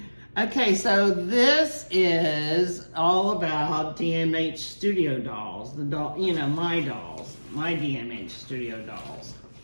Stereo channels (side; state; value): both; inverted; correlation -1.00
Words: Okay, so this is all about DMH Studio dolls, the doll, you know, my dolls, my DMH Studio dolls.